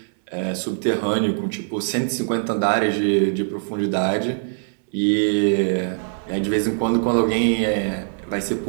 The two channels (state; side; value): silent; left; digital silence